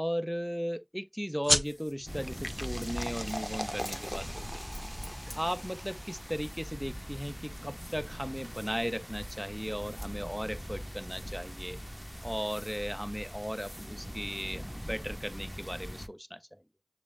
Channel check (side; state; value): both; identical; correlation 1.00